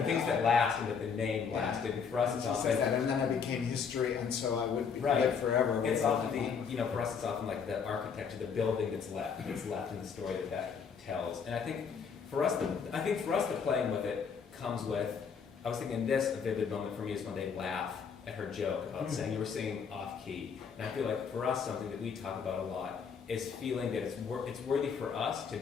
things that last and that the name lasted. And for us, it's often that, and then I became history, and so I would live forever. It's often for us, it's often like the architecture, the building that's left in the story that tells. And I think for us, the playing with it comes with. I was thinking a vivid moment for me is when they laugh at her joke about saying you were singing off key. And I feel like for us, something that we talk about a lot is feeling that it's worthy for us to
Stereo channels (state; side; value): quieter; right; 6.3 dB